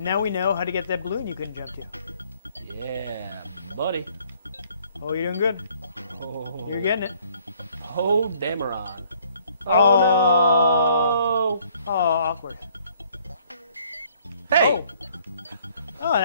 we know how to get that balloon you couldn't jump to. Yeah, buddy. Oh, you're doing good. Oh. You're getting it. Oh, Damaron. Oh, no! Oh, awkward. Hey! Oh. Oh, it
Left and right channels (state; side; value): inverted; both; correlation -0.62